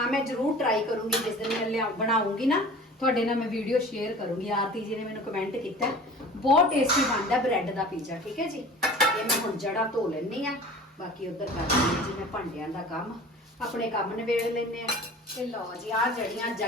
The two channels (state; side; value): normal; both; correlation 0.41